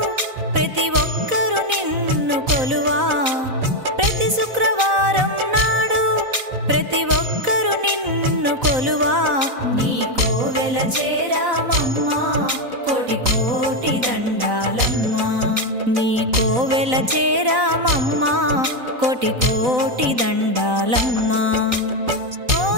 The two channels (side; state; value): left; late; 4.0 ms